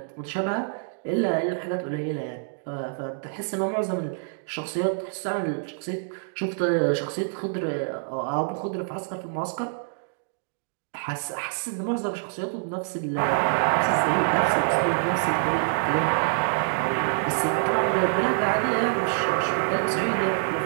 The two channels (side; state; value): left; silent; digital silence